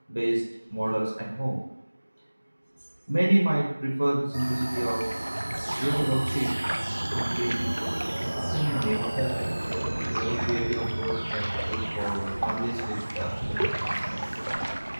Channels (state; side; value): inverted; both; correlation -1.00